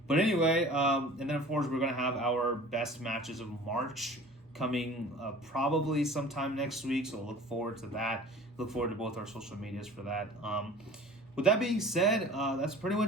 But anyway, and then of course we're gonna have our best matches of March coming probably sometime next week. So look forward to that. Look forward to both our social medias for that. With that being said, that's pretty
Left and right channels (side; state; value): both; normal; correlation 0.44